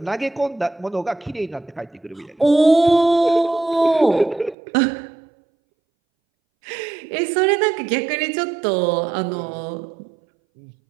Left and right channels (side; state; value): left; drops out; at 4.5 s